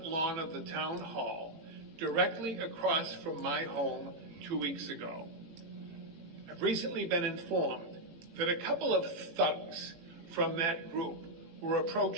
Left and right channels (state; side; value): late; left; 18 ms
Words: lawn of the town hall directly across from my home 2 weeks ago. I've recently been informed that a couple of thugs from that group were